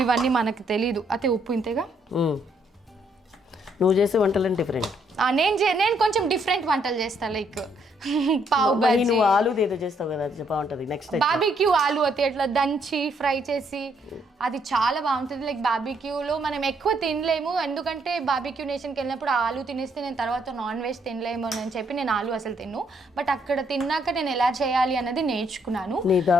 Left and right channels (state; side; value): normal; both; correlation 0.71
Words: ఇవన్నీ మనకు తెలీదు. అయితే ఉప్పు ఇంతేగా. నువ్వు చేసే వంటలు డిఫరెంట్, నేను కొంచెం డిఫరెంట్ వంటలు చేస్తా. లైక్ పావు బజ్జీ, నువ్వు ఆలు ఏదో చేస్తావు కదా, అది బాగుంటుంది. నెక్స్ట్ బార్బిక్యూ ఆలు అయితే అట్లా దంచి ఫ్రై చేసి అది చాలా బాగుంటుంది. లైక్ బార్బిక్యూలో మనం ఎక్కువ తినలేము, ఎందుకంటే బార్బిక్యూ నేషన్కి వెళ్ళినప్పుడు ఆలు తినేస్తే నేను తర్వాత నాన్ వెజ్ తినలేము అని చెప్పి నేను ఆలు అసలు తిన్ను. బట్ అక్కడ తిన్నాక నేను ఎలా చేయాలి అన్నది నేర్చుకున్నాను. నీ